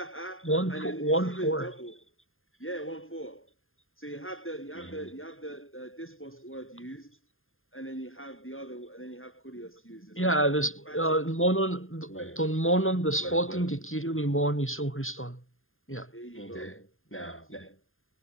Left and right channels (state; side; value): late; right; 0.59 ms